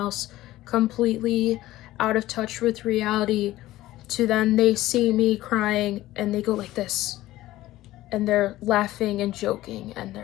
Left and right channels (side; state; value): right; quieter; 16.0 dB